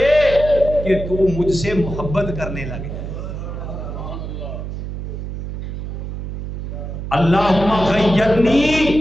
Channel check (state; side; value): noise; right; hum, 7 dB below the sound